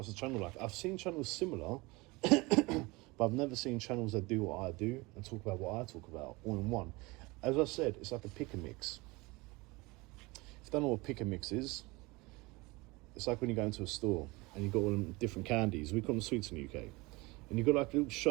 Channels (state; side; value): quieter; left; 23.8 dB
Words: a channel like, I've seen channels similar, but I've never seen channels that do what I do and talk about what I talk about all in one. As I said, it's like a pick and mix. If you don't know what pick and mix is, it's like when you go into a store and you've got all them different candies. We call them sweets in the UK. And you've got like a little